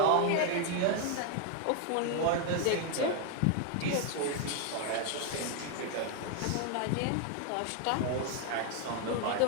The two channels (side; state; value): both; different; correlation 0.01